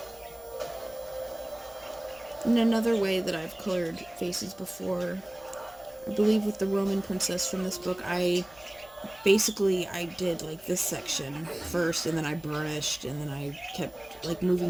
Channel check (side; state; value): right; noise; rumble, 29 dB below the sound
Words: And another way that I've colored faces before, I believe with the Roman princess from this book, I did like this section first, and then I burnished, and then I kept like